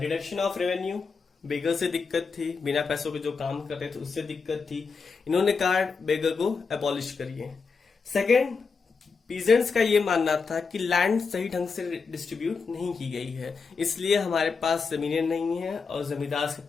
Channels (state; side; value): quieter; right; 5.0 dB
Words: रिडक्शन ऑफ रेवेन्यू। बेगर से दिक्कत थी, बिना पैसों के जो काम कर रहे थे उससे दिक्कत थी। इन्होंने कहा बेगर को एबॉलिश करिए। सेकेंड, पीजेंट्स का ये मानना था कि लैंड सही ढंग से डिस्ट्रीब्यूट नहीं की गई है, इसलिए हमारे पास जमीनें नहीं है और जमींदार के